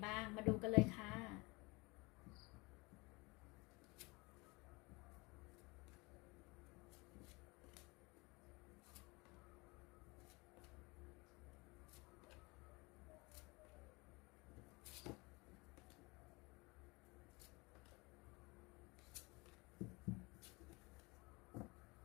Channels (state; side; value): quieter; right; 25.6 dB